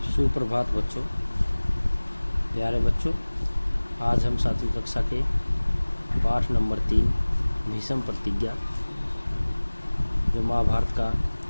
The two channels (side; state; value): both; inverted; correlation -1.00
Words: सुप्रभात बच्चों, प्यारे बच्चों। आज हम 7वीं कक्षा के पाठ नंबर 3 भीष्म प्रतिज्ञा, जो महाभारत का